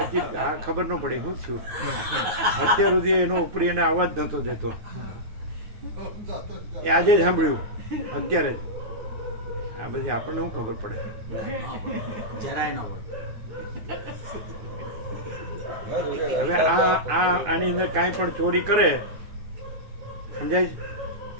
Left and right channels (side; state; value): left; late; 9.4 ms